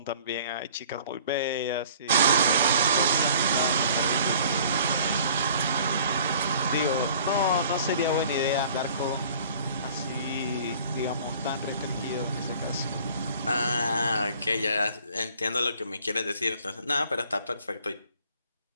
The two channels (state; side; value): inverted; both; correlation -0.52